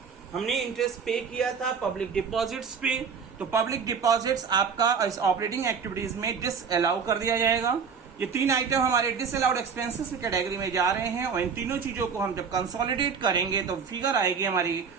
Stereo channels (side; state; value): left; quieter; 6.1 dB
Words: हमने इंटरेस्ट पे किया था पब्लिक डिपॉजिट्स पे, तो पब्लिक डिपॉजिट्स आपका इस ऑपरेटिंग एक्टिविटीज में डिसअलाउ कर दिया जाएगा। ये तीन आइटम हमारे डिसअलाउड एक्सपेंसेस की कैटेगरी में जा रहे हैं, और इन तीनों चीजों को हम जब कंसोलिडेट करेंगे तो फिगर आएगी हमारी